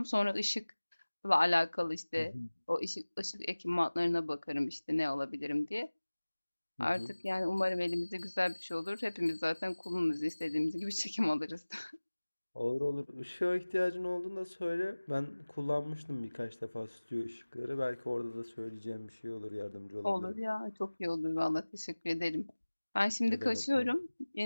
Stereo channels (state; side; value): inverted; both; correlation -1.00